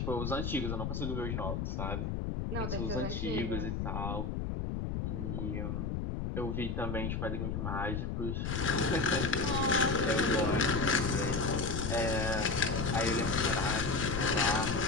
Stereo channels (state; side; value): noise; left; rumble, 2 dB below the sound